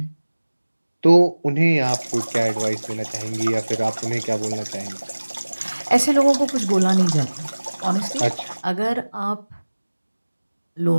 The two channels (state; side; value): inverted; both; correlation -1.00